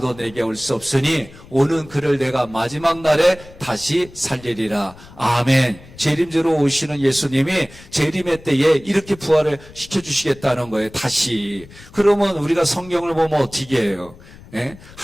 내게 올 수 없으니 오는 그를 내가 마지막 날에 다시 살리리라. 아멘. 재림주로 오시는 예수님이 재림의 때에 이렇게 부활을 시켜주시겠다는 거예요. 다시. 그러면 우리가 성경을 보면 어떻게 해요? 예?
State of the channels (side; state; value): left; noise; rumble, 21 dB below the sound